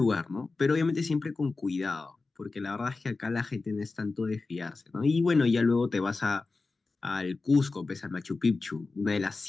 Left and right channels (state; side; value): quieter; right; 3.8 dB